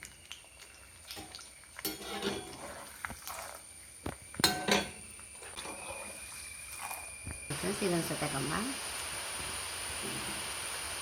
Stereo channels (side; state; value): both; identical; correlation 1.00